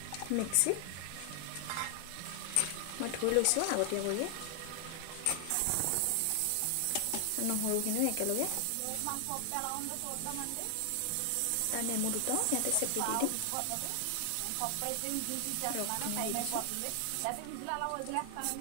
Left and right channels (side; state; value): both; different; correlation 0.00